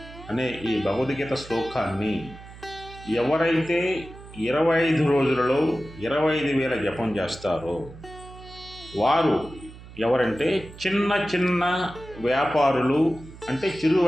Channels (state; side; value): noise; right; hum, 17 dB below the sound